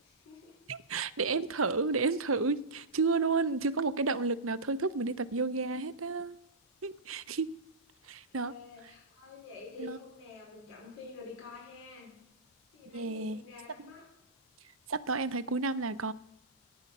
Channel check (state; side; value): quieter; left; 3.4 dB